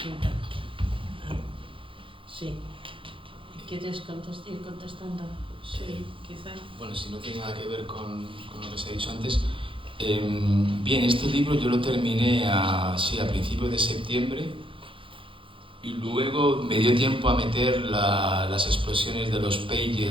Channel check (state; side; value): late; left; 0.25 ms